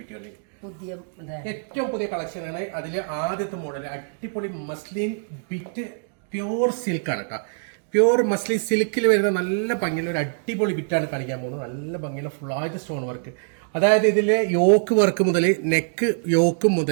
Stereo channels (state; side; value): silent; left; digital silence